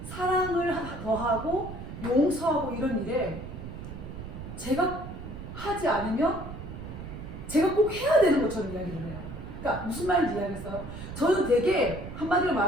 사랑을 더하고 용서하고 이런 일에 제가 하지 않으면 제가 꼭 해야 되는 것처럼 이야기를 해요. 그러니까 무슨 말인지 이해하겠어요? 저는 되게 한마디로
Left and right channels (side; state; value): right; noise; rumble, 10 dB below the sound